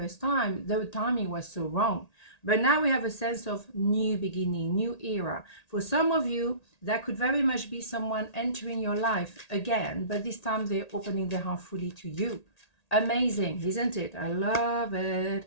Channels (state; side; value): late; right; 1.8 ms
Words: time, the timing was so wrong. But now we have a sense of new beginning, new era. For some of you, that could very much be someone entering your life again, but this time they're opening their heart fully to you. Amazing, isn't it? I love